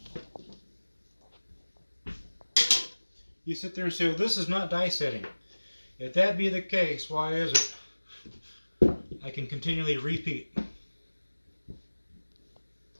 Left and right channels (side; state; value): both; inverted; correlation -1.00